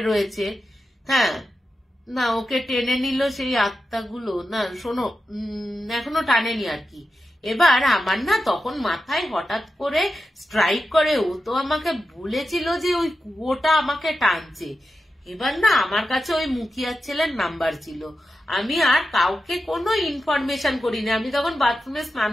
রয়েছে। হ্যাঁ, না ওকে টেনে নিল সেই আত্মাগুলো, না শোনো এখনো টানেনি আর কি, এবার আমার না তখন মাথায় হঠাৎ করে স্ট্রাইক করে, ও তো আমাকে বলেছিল যে ওই কুয়োটা আমাকে টানছে। এবার না আমার কাছে ওই মুখিয়ার ছেলের নাম্বার ছিল, আমি আর কাউকে কোনো ইনফরমেশন করিনি। আমি তখন বাথরুমে স্নান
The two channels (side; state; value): both; normal; correlation 0.91